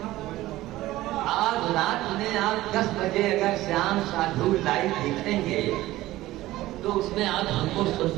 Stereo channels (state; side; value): quieter; left; 16.5 dB